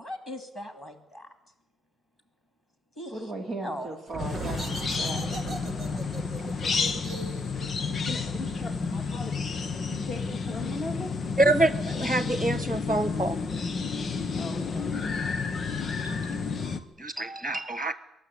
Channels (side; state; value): both; normal; correlation 0.74